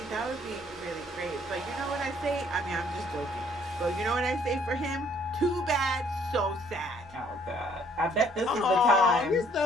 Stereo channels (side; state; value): both; normal; correlation 0.62